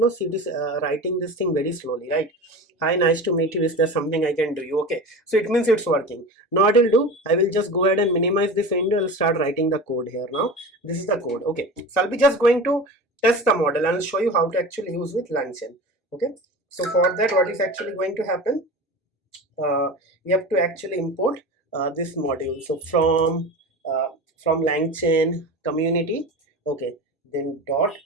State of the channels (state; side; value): normal; both; correlation 0.31